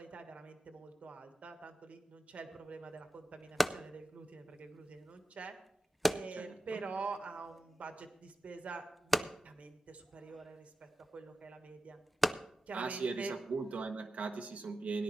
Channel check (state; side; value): normal; both; correlation 0.92